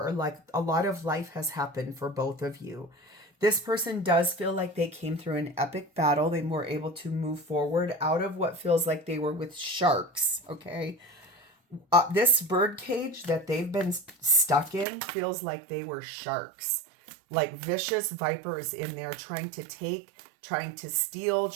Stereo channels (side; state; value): left; drops out; at 14.9 s